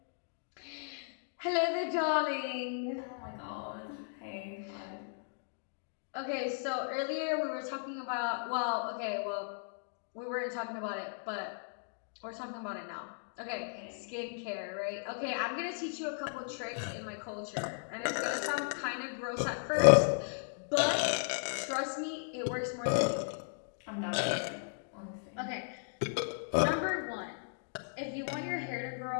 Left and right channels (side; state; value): right; silent; digital silence